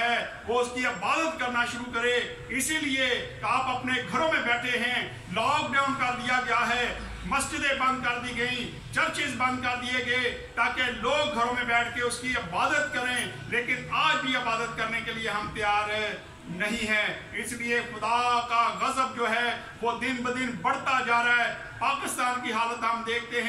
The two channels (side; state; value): both; identical; correlation 1.00